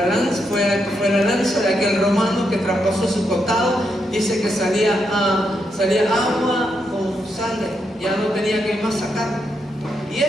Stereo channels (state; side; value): normal; both; correlation 0.81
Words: lanza de aquel romano que traspasó su costado, dice que salía agua con sangre, ya no tenía que más sacar. Y